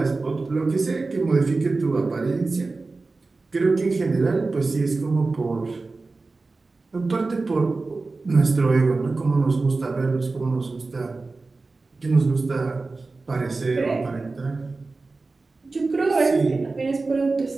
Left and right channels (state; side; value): quieter; left; 3.7 dB